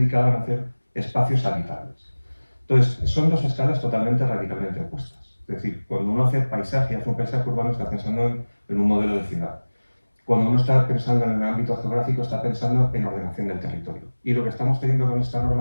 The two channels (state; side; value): inverted; both; correlation -1.00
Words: a hacer espacios habitables. Entonces, son dos escalas totalmente radicalmente opuestas. Es decir, cuando uno hace paisaje, hace un paisaje urbano, está pensando en un modelo de ciudad. Cuando uno está pensando en el ámbito geográfico, está pensando en ordenación del territorio. Y lo que estamos teniendo con esta